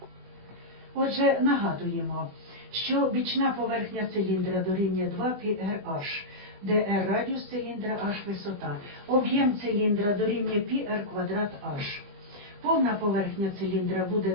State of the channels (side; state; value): left; late; 20 ms